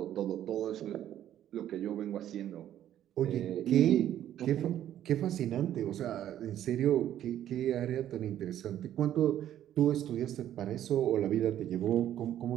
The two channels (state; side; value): quieter; left; 11.5 dB